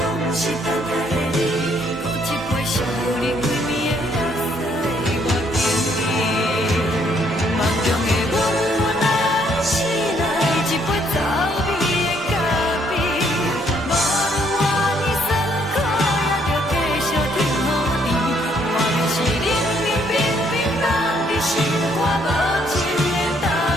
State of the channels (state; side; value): normal; both; correlation 0.68